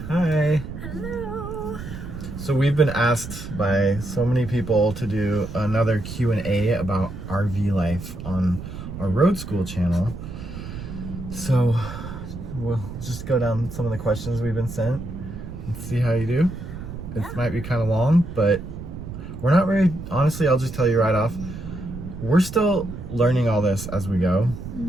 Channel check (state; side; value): noise; right; rumble, 9 dB below the sound